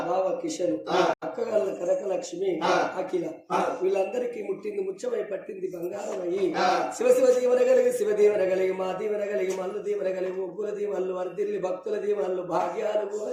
బావ కిషన్ అక్కగల్ల కనకలక్ష్మి అఖిల వీళ్ళందరికీ ముట్టింది ముచ్చమై పట్టింది బంగారం అయ్యి శివ శివ దీవెన కలిగి శివ దీవెన కలిగి మా దీవెన కలిగి మల్లు దీవెన కలిగి ముగ్గుల దీవెనలు వర్దిల్లి భక్తుల దీవెనలు భాగ్యాలు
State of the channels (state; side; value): identical; both; correlation 1.00